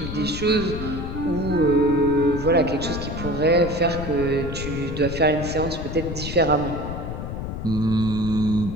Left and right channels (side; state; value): left; noise; rumble, 6 dB below the sound